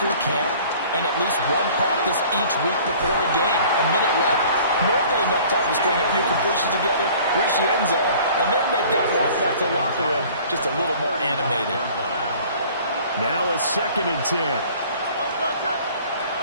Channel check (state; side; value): inverted; both; correlation -0.50